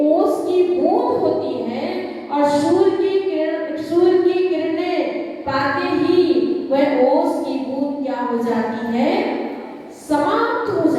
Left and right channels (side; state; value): both; identical; correlation 1.00